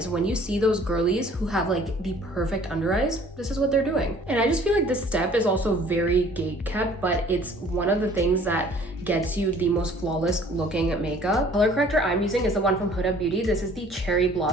When you see those girlies who have like the perfect under eyes, this is what they're doing. And I just feel like this step is also very gate kept, but it's one of the things that gets you the most flawless looking makeup. Color corrector I'm using is the one from Huda Beauty. This is the Cherry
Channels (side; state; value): both; normal; correlation 0.53